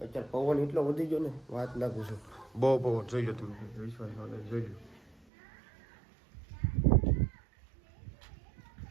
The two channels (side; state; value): left; drops out; at 5.2 s